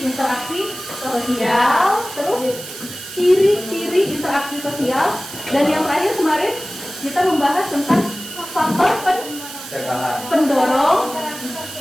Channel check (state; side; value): noise; right; hiss, 12 dB below the sound